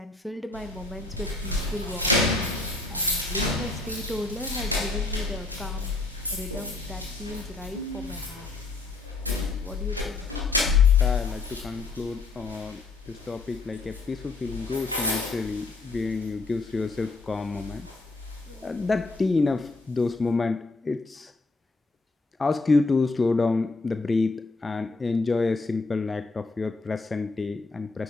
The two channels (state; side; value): quieter; right; 3.6 dB